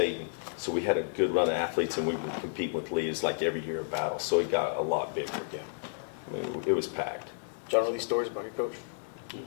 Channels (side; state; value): right; silent; digital silence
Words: And so we had a good run of athletes, and we would compete with Lee's like every year of battle. So it got a lot bigger. Yeah. I mean, it was packed. John, know these stories about your coach?